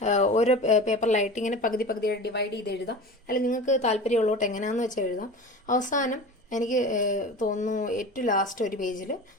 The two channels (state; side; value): normal; both; correlation 0.33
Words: ഓരോ പേപ്പറിലായിട്ട് ഇങ്ങനെ പകുതി ഡിവൈഡ് ചെയ്ത് എഴുതാം. അല്ലെങ്കിൽ നിങ്ങൾക്ക് താല്പര്യമുള്ളോട്ട് എങ്ങനെയാണെന്ന് വെച്ചാൽ എഴുതാം. അവസാനം എനിക്ക് തോന്നുന്നു ഏറ്റവും ലാസ്റ്റ് ഒരു പേജിൽ